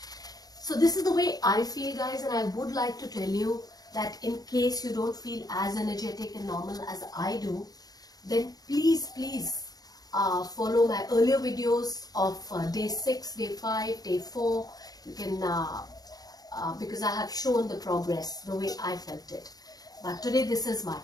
So this is the way I feel, guys, and I would like to tell you that in case you don't feel as energetic and normal as I do, then please follow my earlier videos of day 6, day 5, day 4. You can, because I have shown the progress the way I felt it. But today this is my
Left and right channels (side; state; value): right; late; 0.19 ms